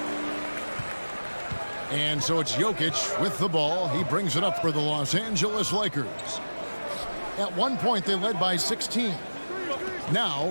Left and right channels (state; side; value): inverted; both; correlation -1.00